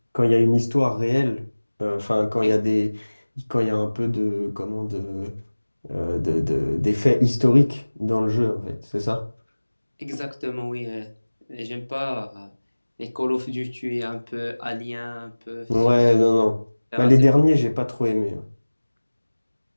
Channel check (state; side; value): inverted; both; correlation -1.00